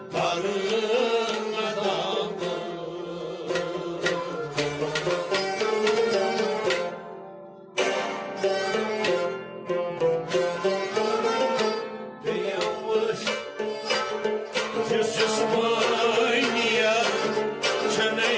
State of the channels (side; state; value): both; identical; correlation 1.00